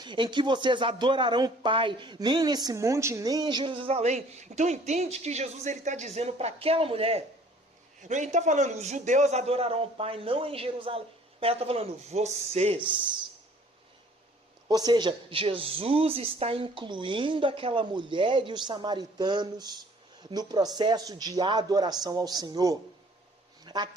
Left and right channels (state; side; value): normal; both; correlation 0.55